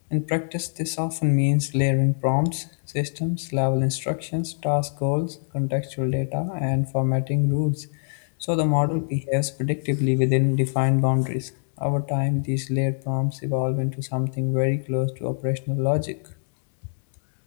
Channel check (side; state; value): right; silent; digital silence